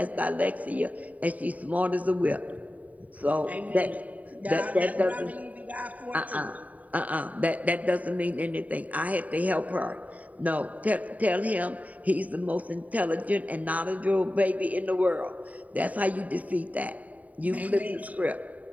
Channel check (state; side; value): late; left; 0.071 ms